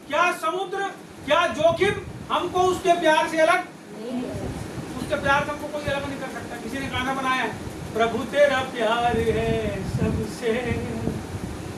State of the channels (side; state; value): both; identical; correlation 1.00